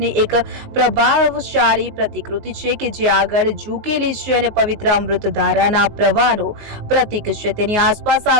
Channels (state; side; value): late; left; 19 ms